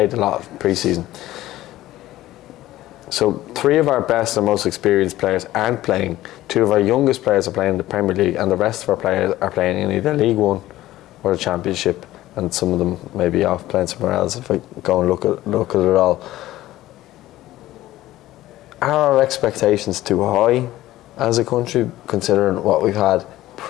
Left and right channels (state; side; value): quieter; right; 15.5 dB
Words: a lot of pre-season. So 3 of our best and most experienced players aren't playing. 2 of our youngest players are playing in the Premier League, and the rest of our players are playing in either League One or the Championship. and some of them may be off playing somewhere else if I go and look at it all. Are our expectations too high as a country, considering what we've had